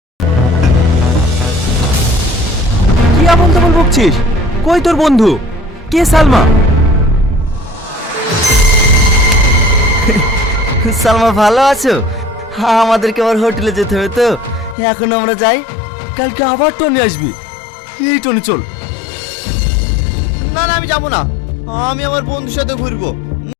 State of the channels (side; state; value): right; drops out; at 14.8 s